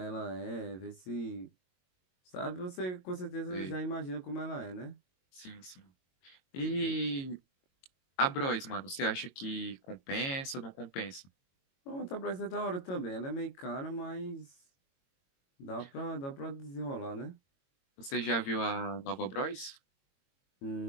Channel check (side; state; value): right; late; 22 ms